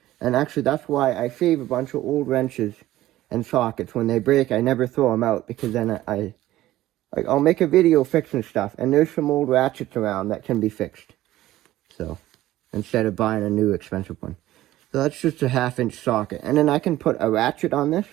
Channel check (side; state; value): left; quieter; 15.2 dB